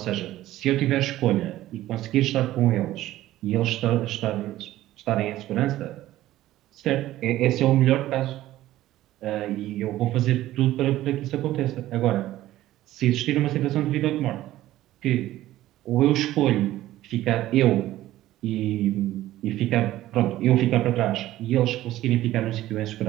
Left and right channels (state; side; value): quieter; left; 14.9 dB